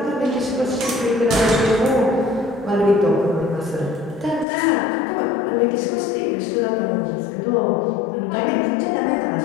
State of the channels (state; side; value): drops out; right; at 4.5 s